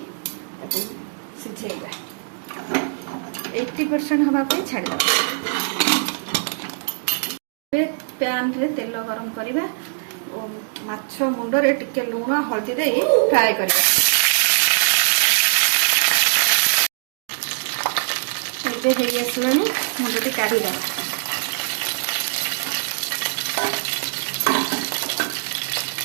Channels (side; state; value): left; silent; digital silence